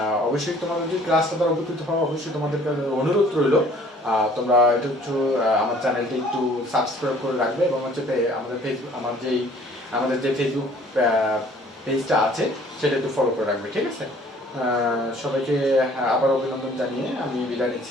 অবশ্যই তোমাদের যদি ক্লাসটা দ্বারা উপকৃত হওয়া, অবশ্যই তোমাদের অনুরোধ রইল তোমরা এটা হচ্ছে আমার চ্যানেলটি একটু সাবস্ক্রাইব করে রাখবে, এবং হচ্ছে আমাদের ফেসবুক আমাদের যে ফেসবুক পেজটা আছে সেটা একটু ফলো করে রাখবে, ঠিক আছে? সবাইকে আবার অভিনন্দন জানিয়ে আমি বিদায়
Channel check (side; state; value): both; normal; correlation 0.55